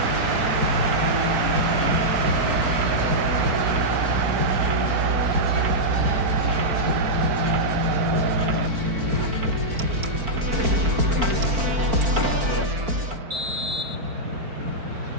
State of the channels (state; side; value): late; left; 4.4 ms